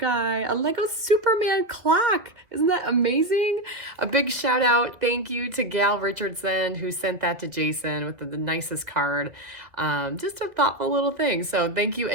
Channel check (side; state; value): left; late; 2.0 ms